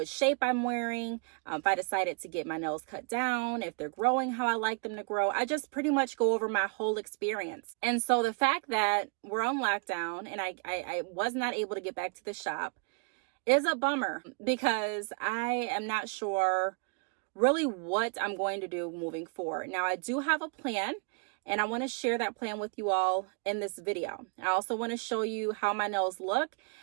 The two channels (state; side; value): quieter; left; 36.0 dB